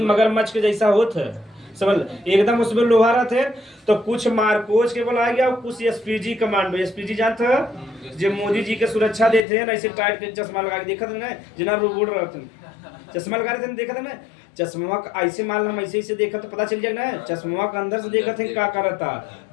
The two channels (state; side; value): drops out; right; at 9.4 s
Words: मगरमच्छ के जैसा होता है समझ एकदम उसमें लोहा रहते तो कुछ मारकोच के बुलाया गया और कुछ एसपीजी कमांडो। एसपीजी जानते हो जो मोदी जी के सुरक्षा देते हैं, ऐसे टाइट के चश्मा लगा के देखा था ना, जिना रोबोट रहते हैं चश्मा लगा रहे थे, देखा था ना चश्मा ऐसे मान हम ऐसे देखा तो पता चल जाएगा ना, चश्मा के अंदर से देखा थे क्या कर